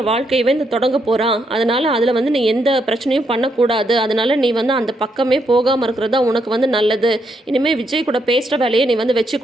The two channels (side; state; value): both; normal; correlation 0.77